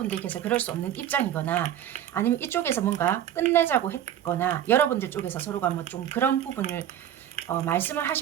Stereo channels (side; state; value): left; quieter; 10.8 dB